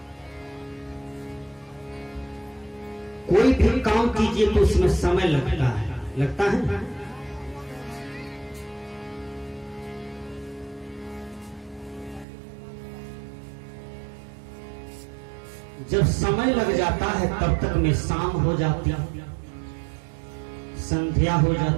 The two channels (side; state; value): left; drops out; at 12.2 s